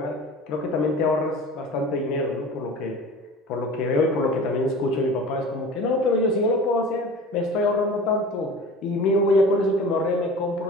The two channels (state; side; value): normal; both; correlation 0.38